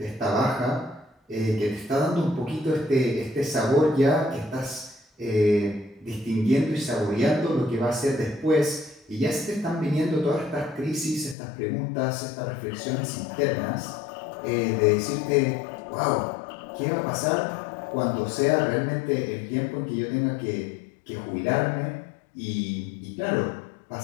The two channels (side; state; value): right; drops out; at 11.4 s